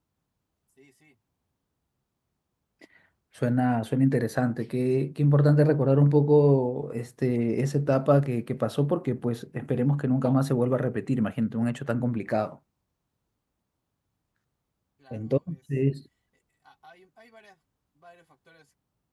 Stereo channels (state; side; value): identical; both; correlation 1.00